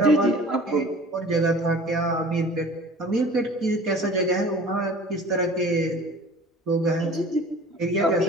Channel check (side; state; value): both; normal; correlation 0.44